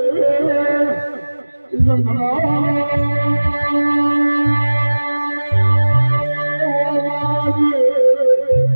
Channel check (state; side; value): inverted; both; correlation -1.00